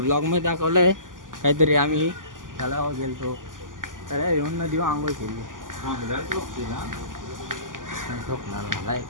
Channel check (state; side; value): late; left; 0.88 ms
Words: दाखवलं आहे काहीतरी. आम्ही तलावावर गेलतो, तळ्यावर येऊन नदीवर आंघोळ केली. झोपणार मला